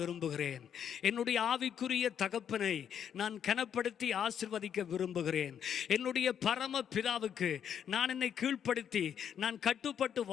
விரும்புகிறேன். என்னுடைய ஆவிக்குரிய தகப்பனை நான் கனப்படுத்தி ஆசீர்வதிக்க விரும்புகிறேன். என்னுடைய பரம பிதாவுக்கு நான் என்னை கீழ்ப்படுத்தி நான் கட்டுப்பட்டு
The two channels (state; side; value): quieter; right; 8.6 dB